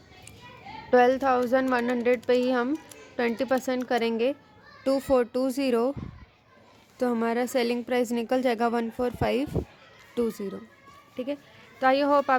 $12,100 पे ही हम 20% करेंगे 2420, तो हमारा सेलिंग प्राइस निकल जाएगा 14520। ठीक है, तो आई होप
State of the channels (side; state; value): both; identical; correlation 1.00